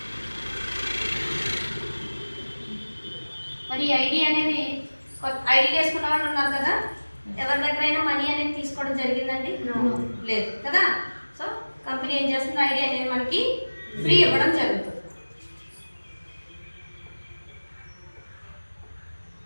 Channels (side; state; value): both; inverted; correlation -1.00